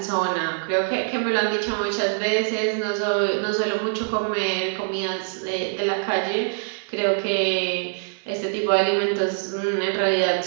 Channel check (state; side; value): silent; left; 63 dB below the other